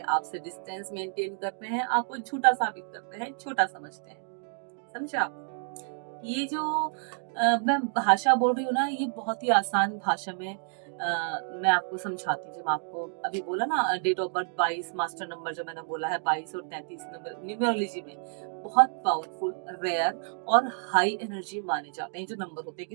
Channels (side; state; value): left; silent; 58 dB below the other